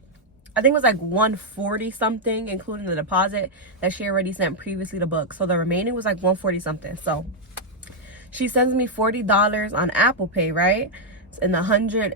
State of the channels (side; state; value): both; normal; correlation -0.02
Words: I think it was like 140 something, including the deposit that she already sent previously to book. So the remaining was like 140 something. So she sends me $40 on Apple Pay, right? And the 100